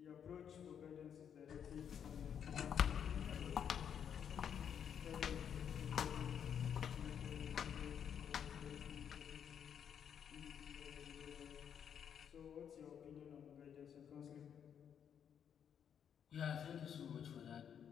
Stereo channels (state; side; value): quieter; right; 8.3 dB